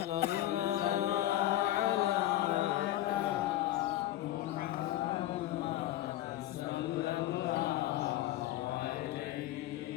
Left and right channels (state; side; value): quieter; right; 14.3 dB